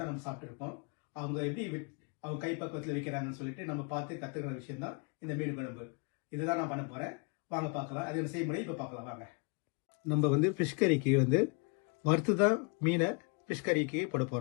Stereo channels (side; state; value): right; quieter; 34.8 dB